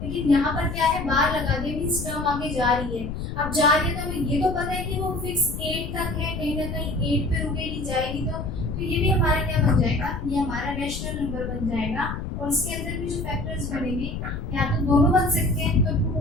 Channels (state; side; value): noise; left; rumble, 6 dB below the sound